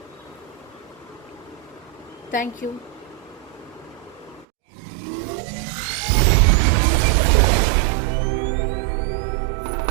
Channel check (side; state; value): left; drops out; at 4.5 s